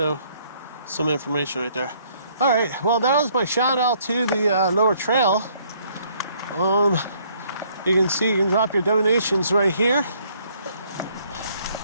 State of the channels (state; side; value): inverted; both; correlation -0.64